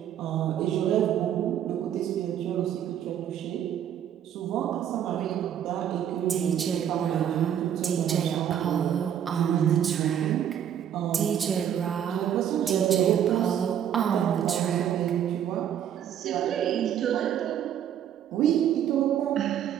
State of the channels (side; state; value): left; quieter; 9.8 dB